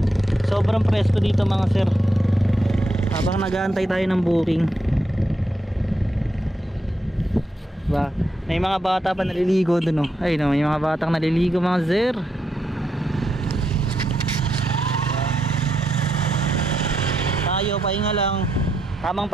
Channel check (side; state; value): both; normal; correlation 0.81